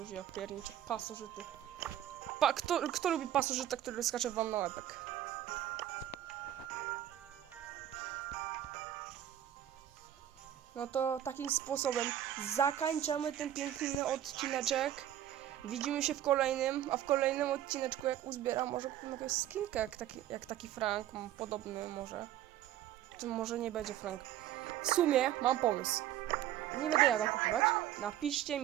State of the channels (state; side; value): quieter; left; 11.9 dB